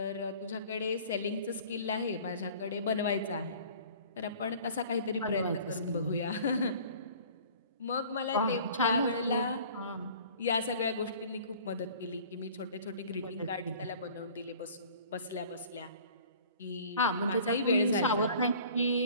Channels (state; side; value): inverted; both; correlation -0.48